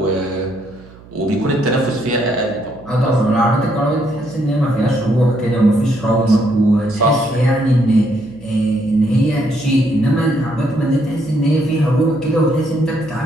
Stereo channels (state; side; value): noise; right; hum, 22 dB below the sound